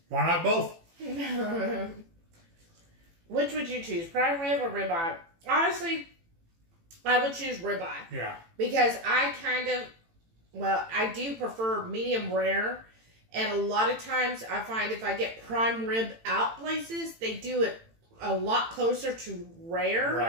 Why not both? Which would you choose, prime rib or ribeye? Honestly, I would choose ribeye. Yeah. Because I do prefer medium rare. And a lot of times I find if I get prime rib out places, they do it a lot closer to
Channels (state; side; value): late; left; 18 ms